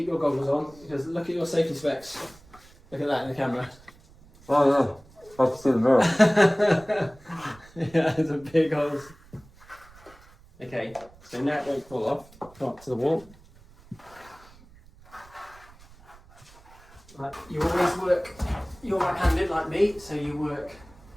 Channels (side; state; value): right; noise; rumble, 24 dB below the sound